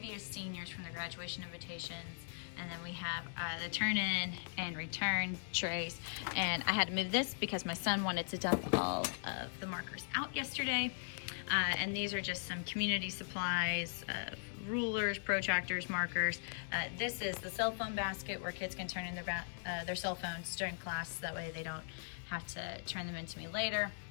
seniors from the graduation invitations. And then we have the turn in and return trays. And I had to move this because my son wanted to dump all of the markers out yesterday. And these are just some community supplies, rulers, protractors, markers. This is the cell phone basket where kids can turn in their cell phones during class. That way they don't have to turn them into me later.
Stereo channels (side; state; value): right; silent; digital silence